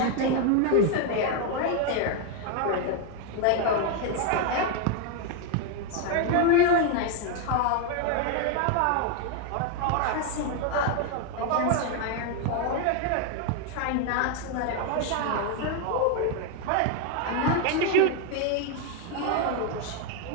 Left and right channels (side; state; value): both; different; correlation 0.01